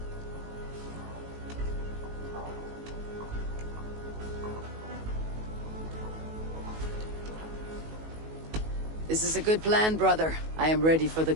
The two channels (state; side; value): late; left; 19 ms